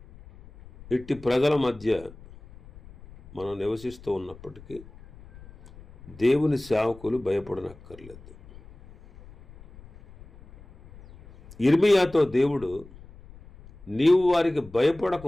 ఇట్టి ప్రజల మధ్య మనం నివసిస్తూ ఉన్నప్పటికీ దేవుని సేవకులు భయపడనక్కర్లేదు. ఇర్మియాతో దేవుడు, నీవు వారికి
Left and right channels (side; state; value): left; noise; rumble, 21 dB below the sound